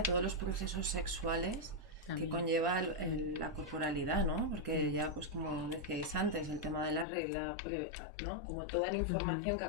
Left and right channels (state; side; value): drops out; right; at 7.1 s